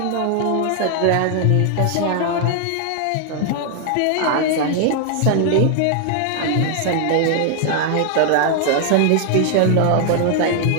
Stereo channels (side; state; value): both; different; correlation 0.00